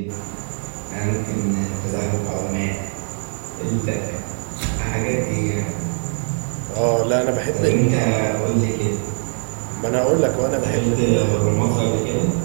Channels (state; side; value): silent; left; 56 dB below the other